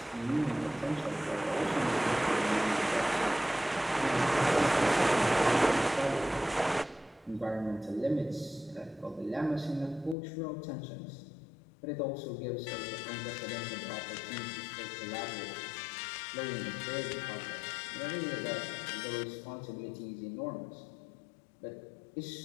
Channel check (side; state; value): right; drops out; at 10.2 s